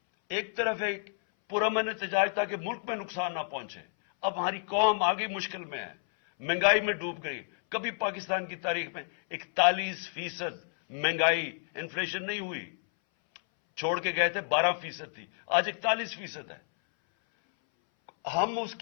ایک طرف ایک پرامن احتجاج تاکہ ملک میں نقصان نہ پہنچے. اب ہماری قوم آگے مشکل میں ہے، مہنگائی میں ڈوب گئی. کبھی پاکستان کی تاریخ میں 41% مہنگائی انفلیشن نہیں ہوئی. چھوڑ کے گئے تھے 12% تھی، آج 41% ہے. ہم اس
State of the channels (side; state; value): right; silent; 58 dB below the other